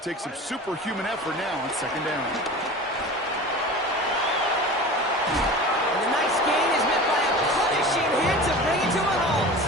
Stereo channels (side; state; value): both; normal; correlation 0.35